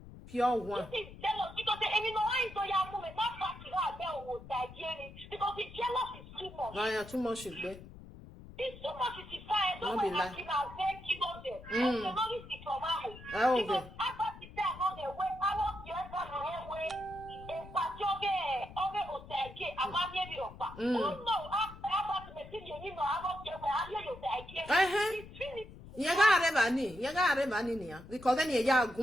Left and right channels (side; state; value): left; noise; rumble, 16 dB below the sound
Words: Pure one. This is jealous because because the jealous is too much. Oh, yeah, too much is there. It's too much is fire. Don't be like. Because then you're